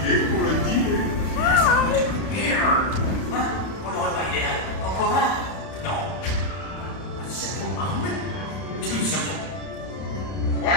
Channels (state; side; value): late; right; 31 ms